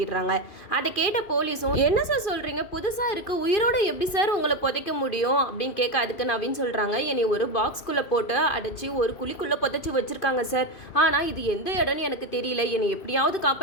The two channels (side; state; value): right; late; 2.5 ms